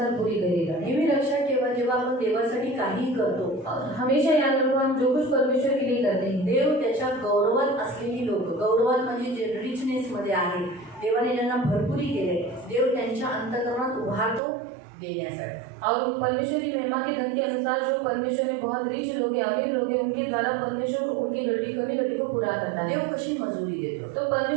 पूरी करेगा. नेहमी लक्षात ठेवा, जेव्हा आपण देवासाठी काही करतो, हमेशा याद रखो हम जो कुछ परमेश्वर के लिए करते हैं, देव त्याच्या गौरवात असलेली लोक, गौरवात म्हणजे जे रिचनेस मध्ये आहे, देवाने ज्यांना भरपुरी केले, देव त्यांच्या अंतःकरणात उभारतो देण्यासाठी. और परमेश्वर की महिमा के धन के अनुसार जो परमेश्वर में बहुत रिच लोग हैं, अमीर लोग हैं, उनके द्वारा परमेश्वर उनकी कमी घटी को पूरा करता है. देव कशी मजुरी देतो? तो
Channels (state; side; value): drops out; left; at 14.4 s